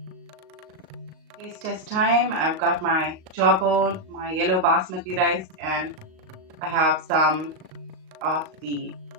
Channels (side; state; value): left; late; 38 ms